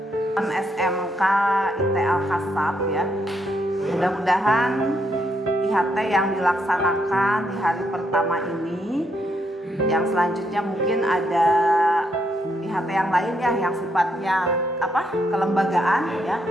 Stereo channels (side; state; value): both; normal; correlation 0.76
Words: SMK IT Al-Kasab ya. Mudah-mudahan IHT yang dilaksanakan di hari pertama ini, yang selanjutnya mungkin ada IHT yang lain ya, yang sifatnya kelembagaan ya,